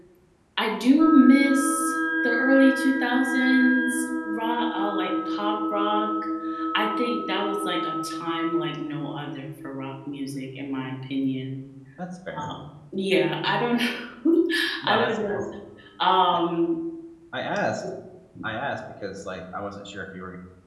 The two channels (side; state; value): both; identical; correlation 1.00